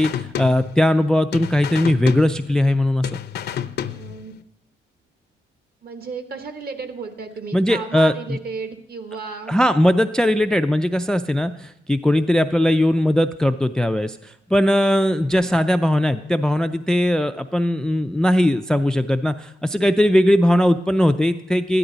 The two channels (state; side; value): normal; both; correlation 0.93